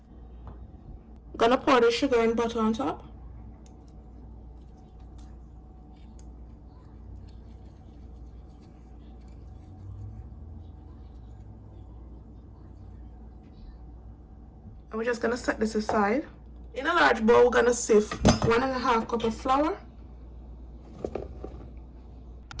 going to pour the sugar and butter on top. And we're just going to set this aside. In a large bowl, we're going to sift 1.5 cup of flour,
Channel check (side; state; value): both; identical; correlation 1.00